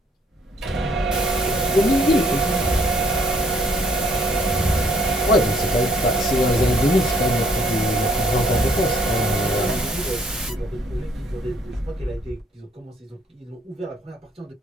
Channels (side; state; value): both; normal; correlation 0.65